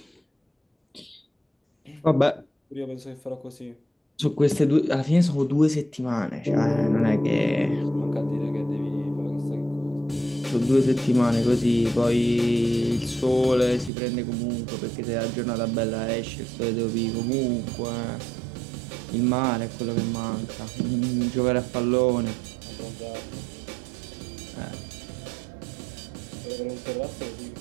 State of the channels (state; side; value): drops out; left; at 13.9 s